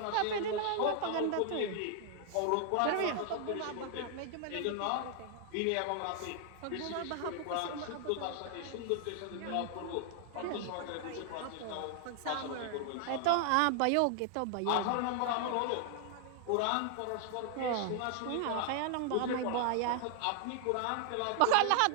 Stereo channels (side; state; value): both; different; correlation 0.00